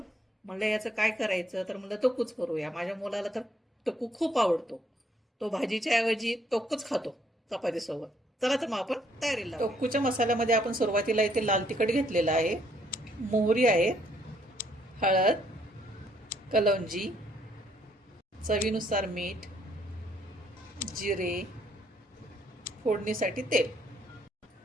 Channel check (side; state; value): both; normal; correlation 0.68